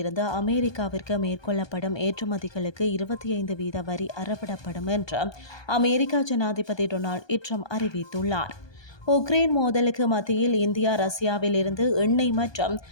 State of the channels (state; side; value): late; right; 1.2 ms